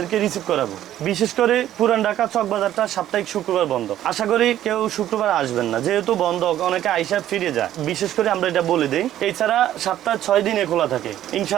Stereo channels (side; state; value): left; quieter; 12.3 dB